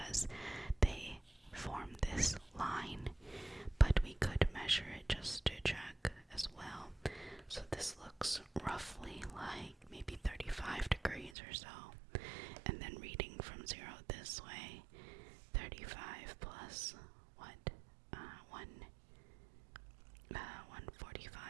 they form this line. But we could measure it just to check as well. So this looks roughly like maybe 35 degrees or so. And then reading from 0 this way, 35 plus what?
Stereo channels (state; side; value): drops out; left; at 11.3 s